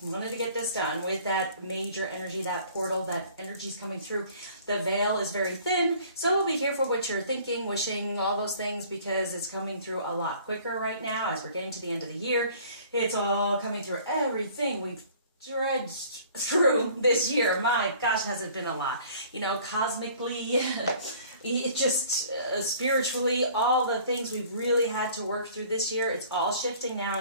We wanted to get this done with that major energy, that portal, that energy's coming through. The veil is very thin, so be careful what you're thinking, wishing, all those things, because it's coming through a lot quicker right now as we're getting to the end of the year. It's all coming through everything we've dredged through this year. My gosh, has it been a lot. You know, cosmically, it just spiritually, all the things we've really had to work through this year, it's all shifting now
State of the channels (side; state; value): both; inverted; correlation -0.52